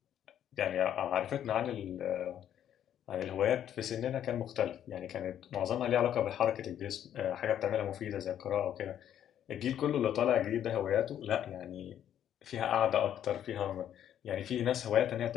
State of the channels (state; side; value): quieter; right; 10.3 dB